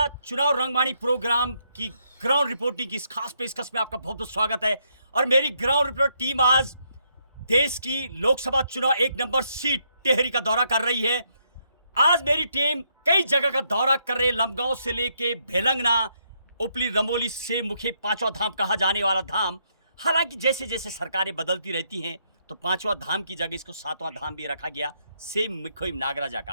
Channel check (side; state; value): both; inverted; correlation -0.75